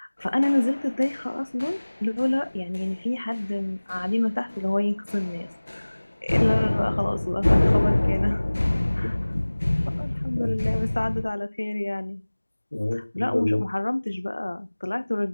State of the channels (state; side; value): inverted; both; correlation -1.00